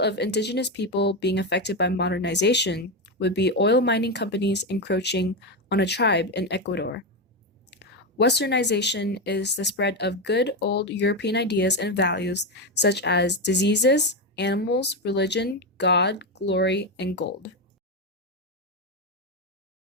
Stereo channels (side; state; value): both; normal; correlation 0.11